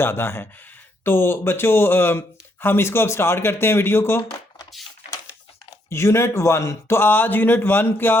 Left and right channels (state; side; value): normal; both; correlation 0.74